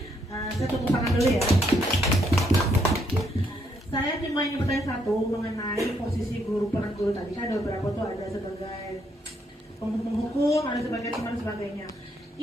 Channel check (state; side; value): normal; both; correlation 0.73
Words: Saya tepuk tangan dulu ya. Saya cuma ingin bertanya satu mengenai posisi guru, peran guru tadi kan ada beberapa tuh, ada sebagai penghukum, ada sebagai teman dan sebagainya.